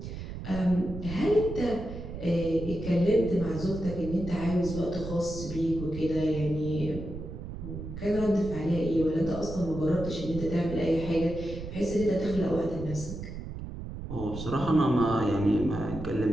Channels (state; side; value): noise; right; rumble, 9 dB below the sound